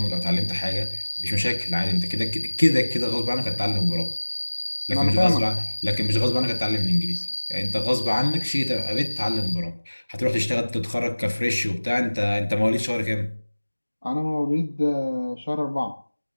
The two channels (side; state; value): both; inverted; correlation -1.00